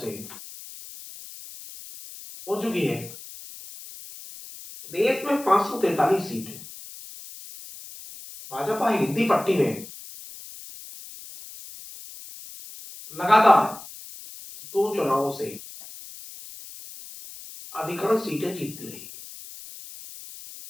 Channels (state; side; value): noise; left; hiss, 15 dB below the sound